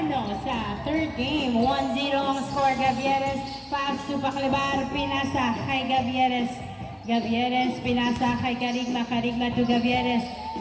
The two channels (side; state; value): both; identical; correlation 1.00